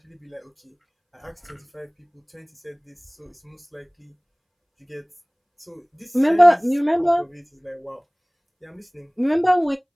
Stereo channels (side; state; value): both; identical; correlation 1.00